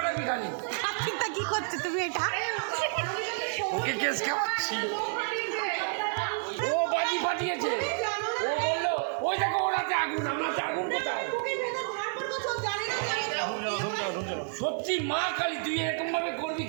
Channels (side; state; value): left; silent; 58 dB below the other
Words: খালি চিন্তা কি করছো তুমি এটা ওকে কেস খাওয়াচ্ছি ও বাজি ফাটিয়েছে ও বললো ওই দেখো ওরাতে আগুন আমরাতে আগুন কোথায় সত্যি মা কালী তুই এরকম ভাবে করবি